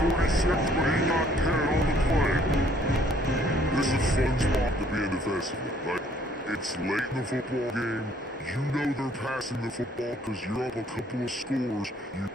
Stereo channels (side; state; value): both; normal; correlation 0.62